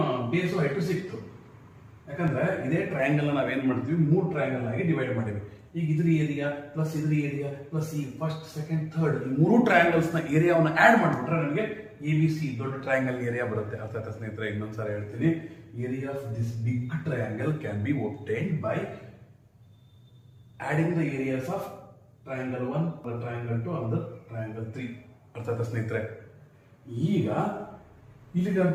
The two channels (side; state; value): both; identical; correlation 1.00